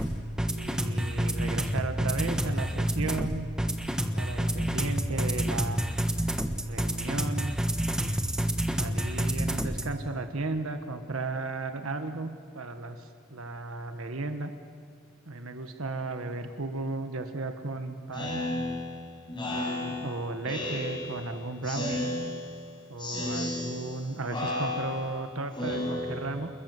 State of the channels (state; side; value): normal; both; correlation 0.62